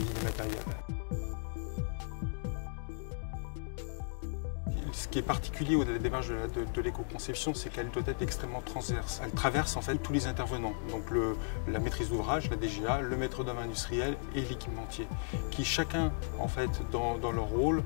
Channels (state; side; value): silent; right; digital silence